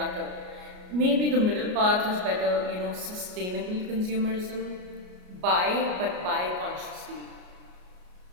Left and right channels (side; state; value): left; late; 33 ms